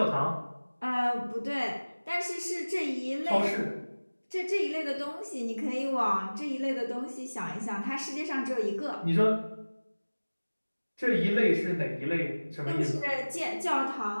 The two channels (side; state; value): both; inverted; correlation -1.00